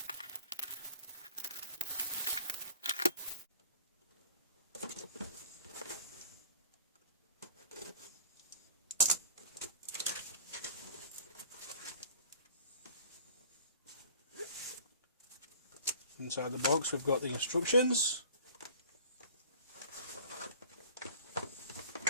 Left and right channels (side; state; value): both; inverted; correlation -0.48